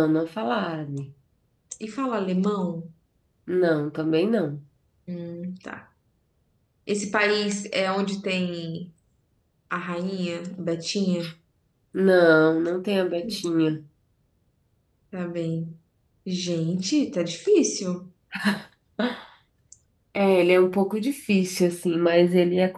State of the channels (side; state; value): both; identical; correlation 1.00